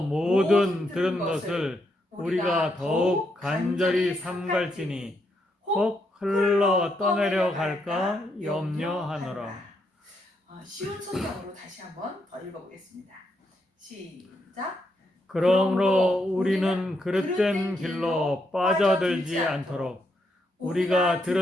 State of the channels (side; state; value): both; normal; correlation 0.79